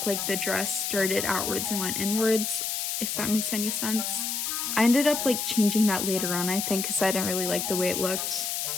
like the dress started outwards and went inwards, if that makes any sense. I ended up like changing that later on, I think, because I didn't really like the way it looked.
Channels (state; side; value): noise; left; hiss, 2 dB below the sound